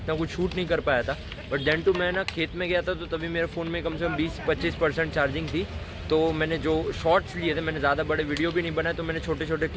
कुछ शूट नहीं कर पाया था। बट देन टू मैं ना खेत में गया था, तो तभी मेरे फ़ोन में कम से कम 20-25% चार्जिंग थी। तो मैंने जो शॉर्ट्स लिए थे, मैंने ज़्यादा बड़े वीडियो भी नहीं बनाए, तो मैंने छोटे छोटे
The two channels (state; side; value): identical; both; correlation 1.00